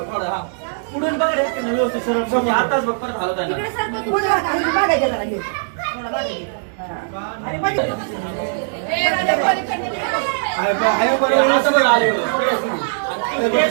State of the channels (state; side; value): silent; left; digital silence